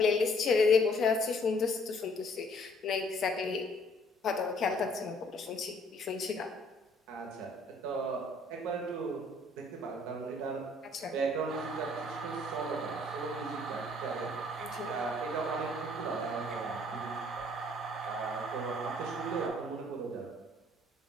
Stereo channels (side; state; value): both; normal; correlation 0.61